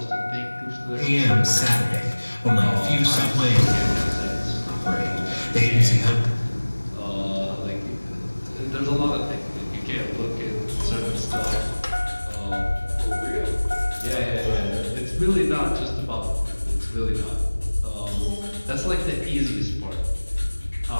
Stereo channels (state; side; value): inverted; both; correlation -1.00